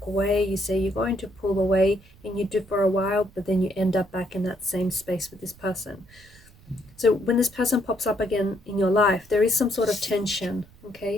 away, you say you're going to pull away, and you do for a while, but then you end up back in that same space with this person. So when this person pops up again in your life, there is some sort of tension,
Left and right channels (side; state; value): right; noise; rumble, 25 dB below the sound